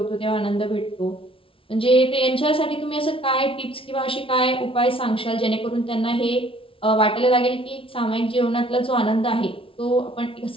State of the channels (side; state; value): right; late; 0.26 ms